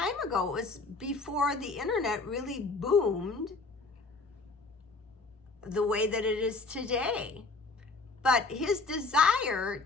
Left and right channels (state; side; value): quieter; right; 3.7 dB